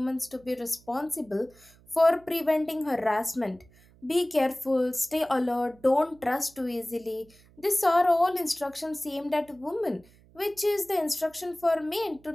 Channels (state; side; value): noise; right; hum, 27 dB below the sound